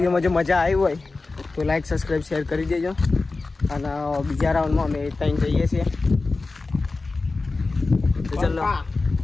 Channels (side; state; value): right; quieter; 3.7 dB